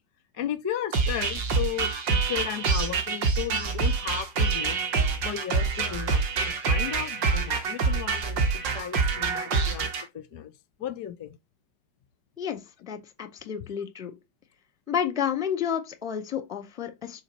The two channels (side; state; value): left; late; 5.6 ms